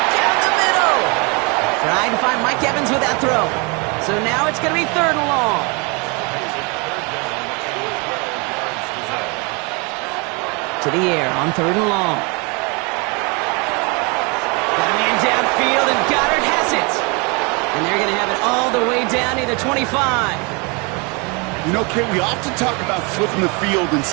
down the middle. Trying to find Mike Evans with that throw. So now it's going to be 3rd and long. To the air on 3rd and long. Got a man downfield, and Goddard has it. And they're going to have it all the way down to the 25. You know, Kate, we often talk about flipping the field in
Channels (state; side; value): quieter; left; 30.7 dB